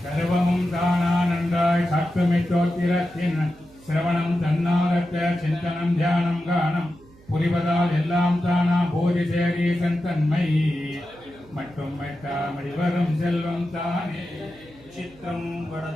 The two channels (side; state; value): right; noise; hum, 25 dB below the sound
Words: சர்வமும் தானானந்தாய் சாத்துமித்தோத்திரத்தின் சிரவணம் தன்னாரத்த சிந்தனம் தியானம் கானம் புரிவதால் எல்லாம் தானா போதி சேரீசன் தன்மை மட்டும் மெட்டாமடி வரும் செல்வம் தானே. चित्रं